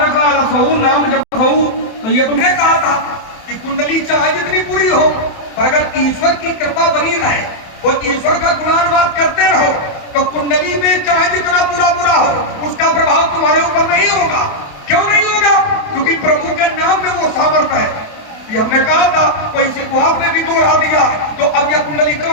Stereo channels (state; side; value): late; right; 28 ms